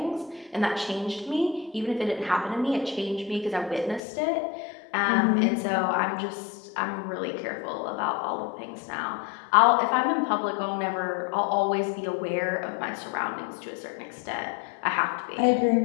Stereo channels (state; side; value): drops out; right; at 4.0 s